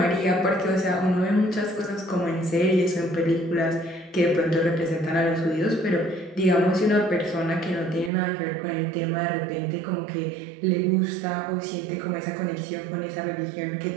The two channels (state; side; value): drops out; left; at 8.1 s